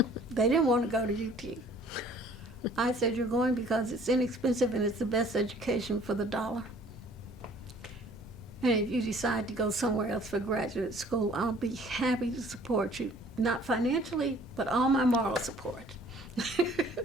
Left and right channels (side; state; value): both; normal; correlation 0.55